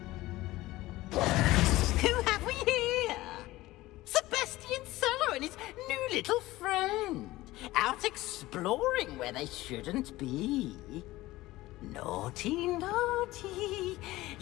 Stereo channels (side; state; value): right; quieter; 17.9 dB